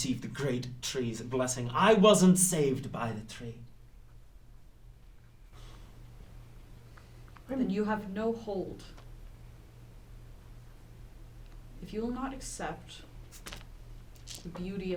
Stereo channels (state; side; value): identical; both; correlation 1.00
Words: the great tree's blessing. I wasn't saved by the tree. Then you have no hold. If you will not accept the beauty